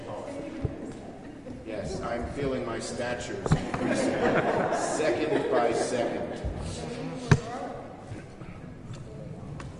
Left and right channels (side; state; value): both; identical; correlation 1.00